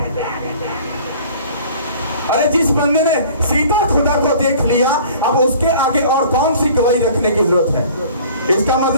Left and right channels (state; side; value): inverted; both; correlation -0.49